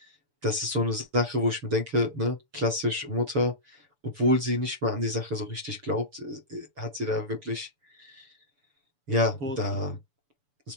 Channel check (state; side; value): late; left; 7.0 ms